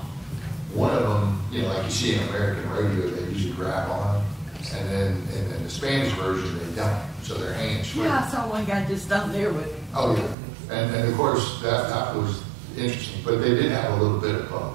one of them, like you see in American radio, they usually grab on, and then in the Spanish version, they don't. So their hands swing. Yeah, I saw one guy just down there with. Oh, yeah. And of course, that was interesting. But they did have a little bit of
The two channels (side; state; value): left; drops out; at 10.4 s